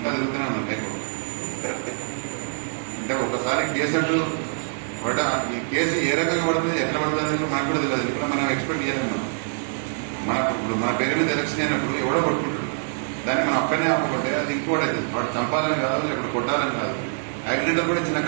తిరుగుతూనే ఉన్నాను లైఫ్. అంటే ఒకసారి కేసు అంటూ ఈ కేసు ఏ రకంగా పడుతుంది, ఎట్లా పడుతుంది అనేది మనకు కూడా తెలియదు. ఇప్పుడు మనం ఎక్స్పెక్ట్ చేయలేము. ఇప్పుడు మన పేరు మీద ఎలక్షన్ అయినప్పుడు ఎవడో కొట్టుకుంటాడు, దాన్ని మనం అక్కడనే ఆపకుంటే అది ఇంకోటి అవుతుంది. వాడు చంపాలని కాదు, లేకపోతే కొట్టాలని కాదు. యాక్సిడెంట్ కూడా చిన్న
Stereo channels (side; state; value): left; silent; 62 dB below the other